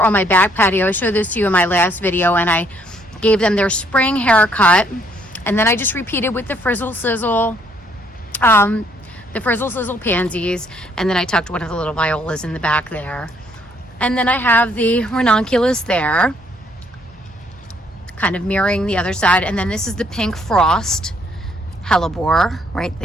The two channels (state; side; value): normal; both; correlation 0.67